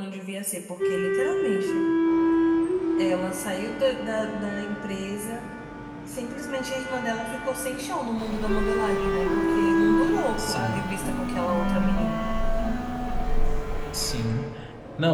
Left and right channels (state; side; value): identical; both; correlation 1.00